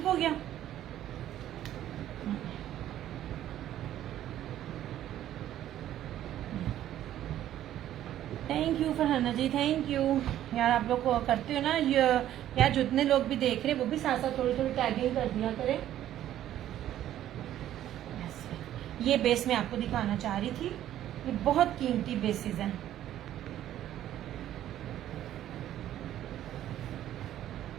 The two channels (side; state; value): left; quieter; 12.2 dB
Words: हो गया। Thank you Farhana ji, thank you यार। आप लोग को करते हो ना यार, जितने लोग भी देख रहे हैं वो भी साथ साथ थोड़ी थोड़ी टैगिंग कर दिया करें। ये बेस मैं आपको दिखाना चाह रही थी, ये बहुत कीमती बेसिस हैं।